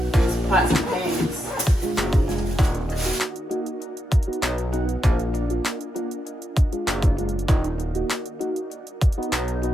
pots and pans.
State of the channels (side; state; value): both; normal; correlation 0.85